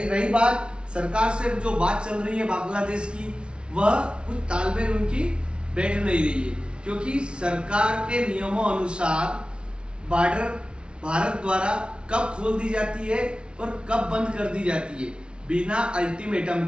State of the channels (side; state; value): left; late; 0.057 ms